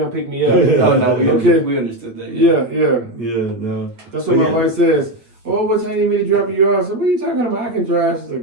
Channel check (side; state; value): left; late; 8.5 ms